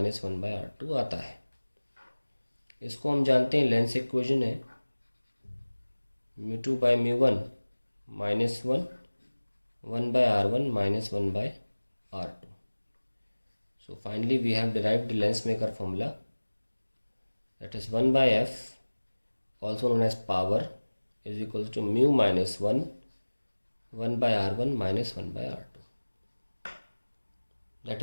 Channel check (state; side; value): inverted; both; correlation -1.00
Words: one by R2 आता है। इसको हम जानते हैं लेंस इक्वेशन है mu two bye mu one minus one by R1 minus one by R2। So finally we have derived the lens maker formula, that is 1 by f, also known as power, is equals to mu minus 1 by R1 minus 1 by R2.